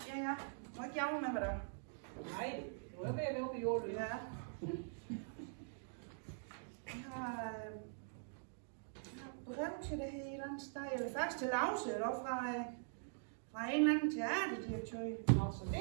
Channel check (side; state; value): left; silent; digital silence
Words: Ja. Må ikke jamre med mig der. Nej, du er ved at være oppe i jorden. Ja. Jeg har brev til det her et eller andet sted. Eller faktisk til Lause, eller fra en eller anden teaterdirektør. Nå, så